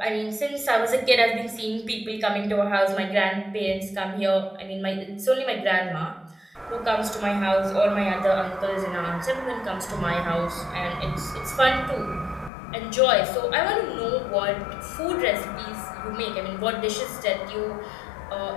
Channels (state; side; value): drops out; right; at 12.5 s